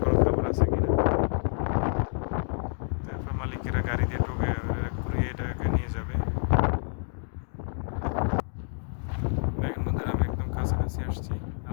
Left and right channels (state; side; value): silent; right; digital silence